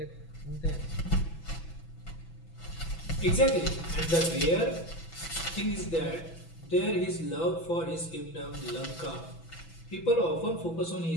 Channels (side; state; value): right; late; 6.0 ms